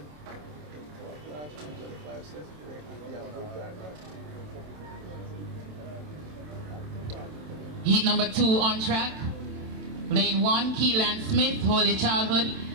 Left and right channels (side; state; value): left; late; 27 ms